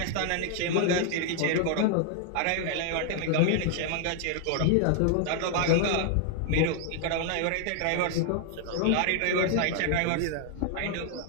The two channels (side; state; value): both; different; correlation 0.00